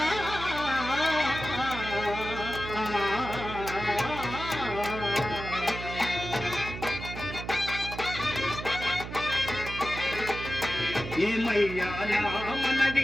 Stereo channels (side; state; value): right; noise; hum, 8 dB below the sound